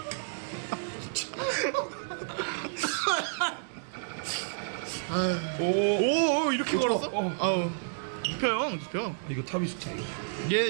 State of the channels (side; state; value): left; silent; digital silence